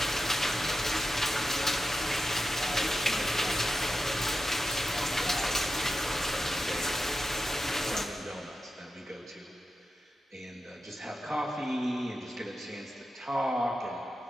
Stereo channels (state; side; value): normal; both; correlation 0.89